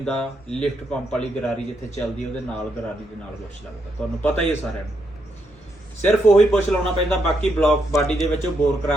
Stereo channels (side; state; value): both; normal; correlation 0.79